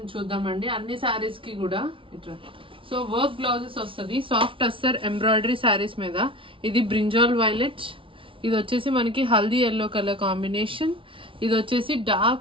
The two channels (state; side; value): late; left; 0.25 ms